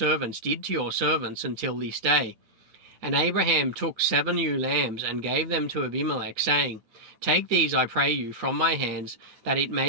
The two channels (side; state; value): left; late; 9.2 ms